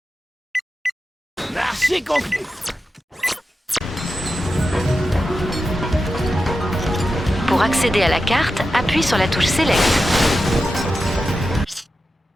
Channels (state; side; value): normal; both; correlation 0.91